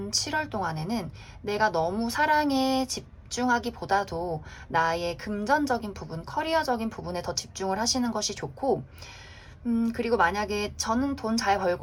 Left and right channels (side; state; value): both; identical; correlation 1.00